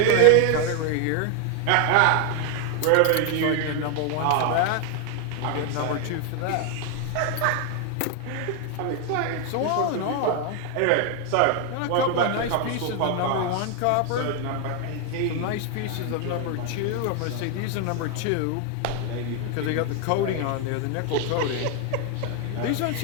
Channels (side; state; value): both; different; correlation 0.01